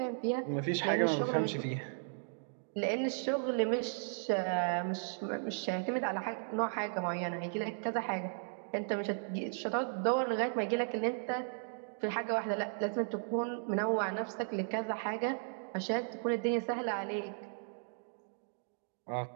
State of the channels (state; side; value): silent; left; digital silence